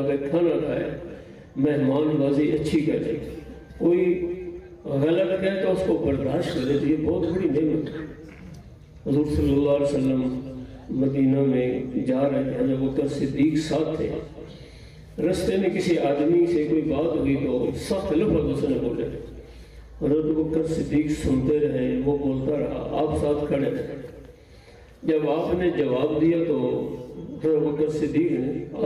کھانا کھائے، مہمان بازی اچھی کرے، کوئی غلط کہے تو اس کو برداشت کرے، تو یہ بہت بڑی نعمت ہے۔ حضور صلی اللہ علیہ وسلم مدینہ میں جا رہے ہیں، جب بکر صدیق ساتھ تھے، رستے میں کسی آدمی سے کوئی بات ہوئی تو سخت لفظ اس نے بولے۔ حضرت بکر صدیق سنتے رہے، وہ بولتا رہا، آپ ساتھ کھڑے رہے۔ جب آپ نے جواب دیا تو حضرت بکر صدیق نے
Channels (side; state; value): both; identical; correlation 1.00